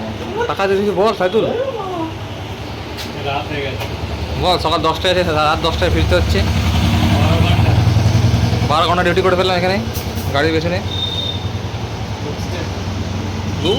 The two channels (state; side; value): identical; both; correlation 1.00